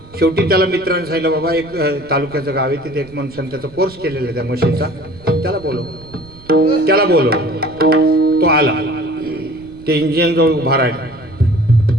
शेवटी त्याला मित्रांनी सांगितलं, बाबा एक तालुक्याचं गाव आहे, तिथे एक माणसाने त्याचा कोर्स केलेला आहे त्या मशीनचा, त्याला बोलव. तो आला, ते इंजिन जवळ उभा राहिला.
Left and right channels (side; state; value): right; noise; rumble, 22 dB below the sound